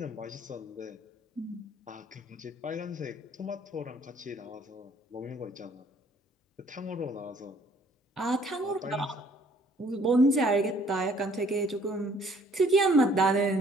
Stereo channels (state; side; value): normal; both; correlation 0.60